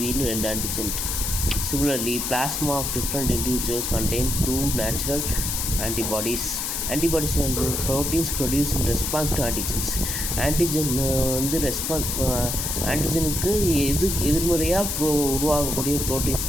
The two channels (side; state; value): left; noise; hiss, 2 dB below the sound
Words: 2 antigen. Similarly, plasma of different individuals contain 2 natural antibodies. Antibodies and proteins produced in response to antigens. Antigen வந்து ஆன்டிஜனுக்கு எதிர்மறையாக உருவாகக்கூடிய ப்ரோட்டீன்ஸ்